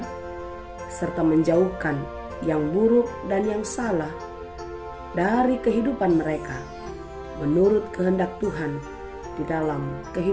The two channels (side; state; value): both; identical; correlation 1.00